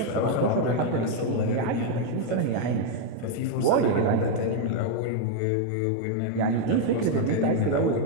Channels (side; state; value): both; different; correlation 0.00